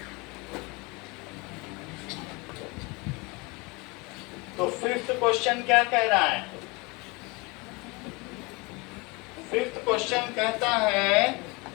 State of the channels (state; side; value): quieter; right; 26.7 dB